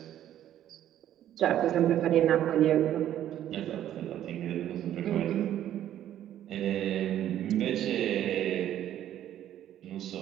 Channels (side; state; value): left; quieter; 11.6 dB